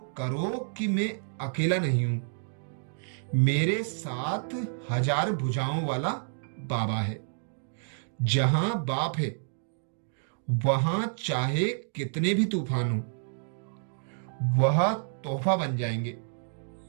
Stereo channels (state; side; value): silent; left; digital silence